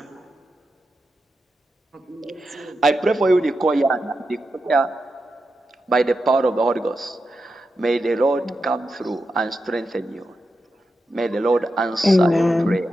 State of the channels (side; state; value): both; normal; correlation 0.88